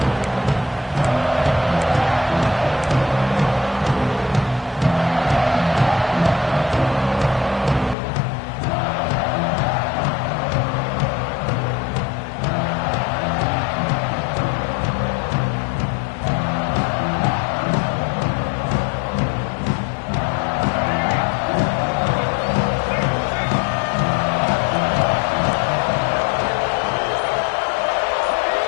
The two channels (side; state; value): right; drops out; at 8.0 s